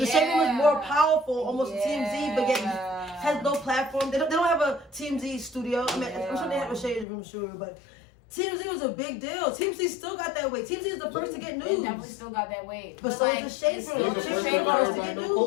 shade room is more powerful, almost TMZ, but yet has no platform. They don't have a TMZ studio. I mean, I'm sure they have a shade room, sure, but TMZ was a big deal. TMZ still got that weight. TMZ is the first to get news. They definitely still got that weight. But so like, is the shade room. The shade room to get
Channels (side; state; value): right; drops out; at 7.1 s